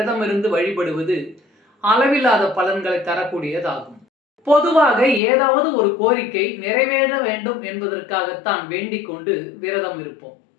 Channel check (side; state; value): right; drops out; at 5.2 s